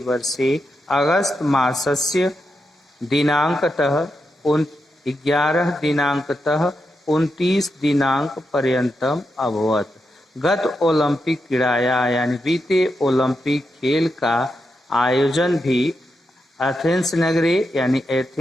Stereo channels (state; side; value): normal; both; correlation 0.86